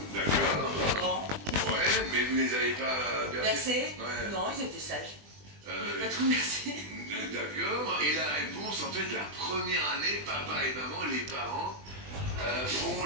d'accord. Grand. Ouais, mais vous ne les avez pas bercés? Bercé? Ouais. Non, ils étaient sages. Ils Euh, n'avaient pas trop bercé. D'accord. Et la réponse, en fait, la première année, papa et maman, les parents, font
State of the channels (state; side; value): late; left; 20 ms